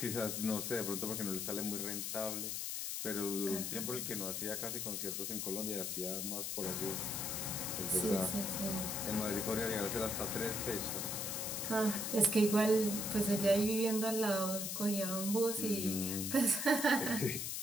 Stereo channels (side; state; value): left; noise; hiss, 2 dB below the sound